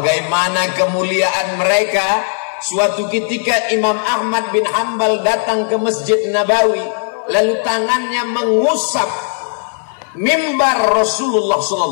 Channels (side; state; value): right; silent; 62 dB below the other